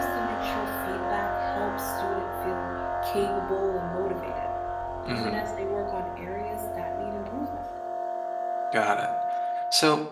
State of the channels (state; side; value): identical; both; correlation 1.00